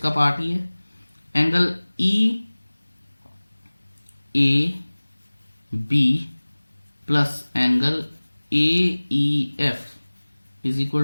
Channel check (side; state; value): both; inverted; correlation -1.00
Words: पार्ट ही है। Angle E A B plus angle A E F is